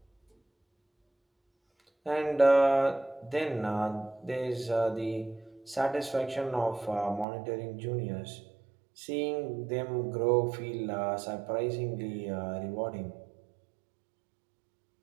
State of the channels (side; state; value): left; drops out; at 7.2 s